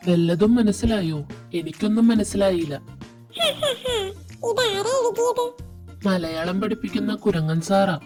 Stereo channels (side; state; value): both; identical; correlation 1.00